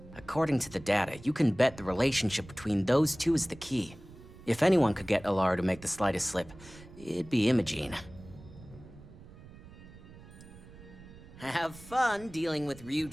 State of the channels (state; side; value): noise; right; rumble, 19 dB below the sound